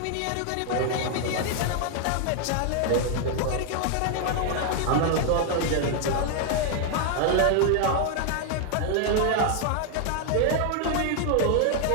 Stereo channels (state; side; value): different; both; correlation 0.00